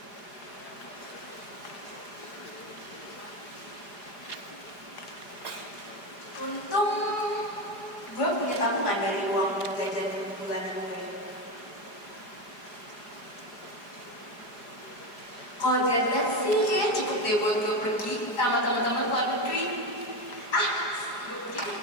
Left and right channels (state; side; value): late; right; 4.9 ms